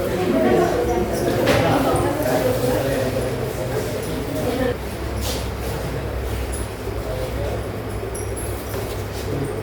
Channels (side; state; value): both; identical; correlation 1.00